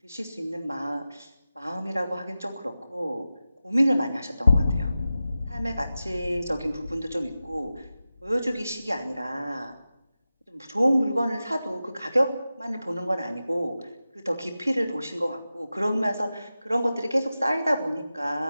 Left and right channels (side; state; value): both; inverted; correlation -0.94